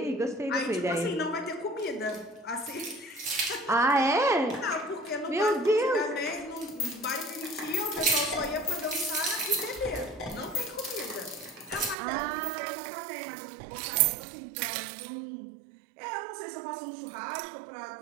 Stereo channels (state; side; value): drops out; left; at 12.0 s